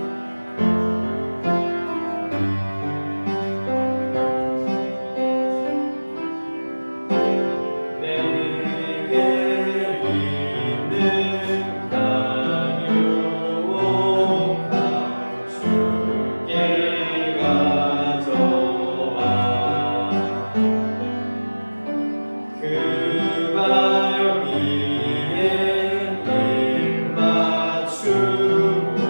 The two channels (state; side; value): inverted; both; correlation -1.00